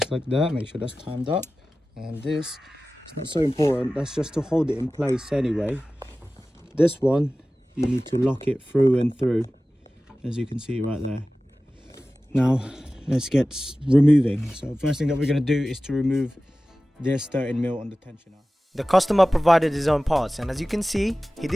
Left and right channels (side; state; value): both; normal; correlation 0.96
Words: like that. Make sure that's timed up. And this, it's not so important. That's just to hold it in place anyway. This one, you need to lock it through and through, as you can see right there. Now, let's get removing. So first thing that we're going to do is to remove this 13mm on the tensioner. The customer provided his own parts, and as you can see, he